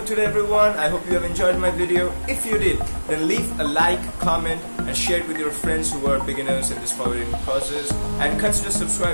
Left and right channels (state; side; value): inverted; both; correlation -1.00